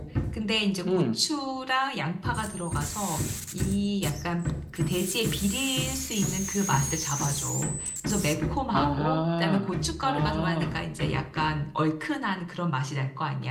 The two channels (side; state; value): both; identical; correlation 1.00